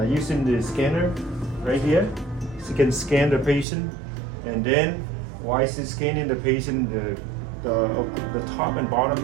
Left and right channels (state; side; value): drops out; left; at 3.7 s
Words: using the scanner right here. She can scan the patient, and then while she's scanning the patient, the top and bottom